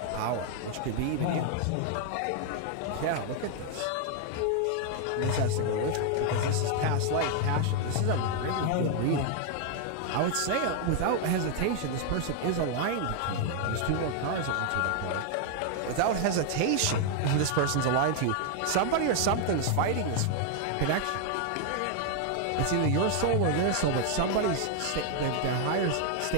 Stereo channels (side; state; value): both; different; correlation 0.00